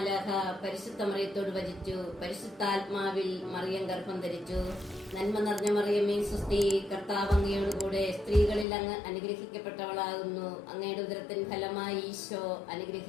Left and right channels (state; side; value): drops out; right; at 8.7 s